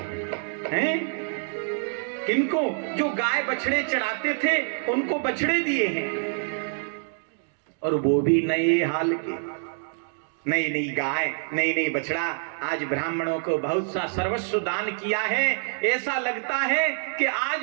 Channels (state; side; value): silent; left; digital silence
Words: हैं, किनको? जो गाय बछड़े चढ़ाते थे उनको बछड़े दिए हैं, और वो भी नए हाल के, नई नई गाय, नई नई बछड़ा। आज ब्राह्मणों को बहुत सा सर्वस्व दान किया है। ऐसा लगता है कि